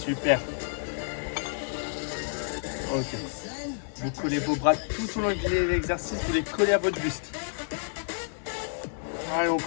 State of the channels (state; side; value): silent; right; digital silence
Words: Ok. Vous collez vos bras tout au long de l'exercice, vous les collez à votre buste. Allez, on